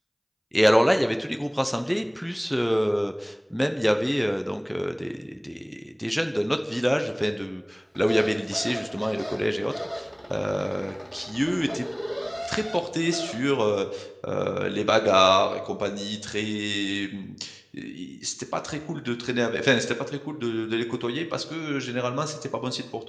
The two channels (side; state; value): both; identical; correlation 1.00